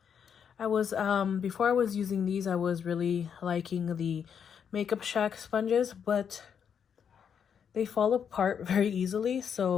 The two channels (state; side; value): quieter; right; 7.6 dB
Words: I was before I was using these, I was really liking the Makeup Shack sponges, but they fall apart very easily.